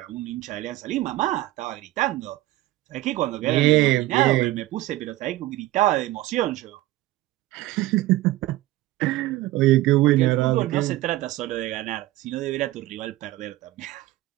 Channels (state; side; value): quieter; left; 16.7 dB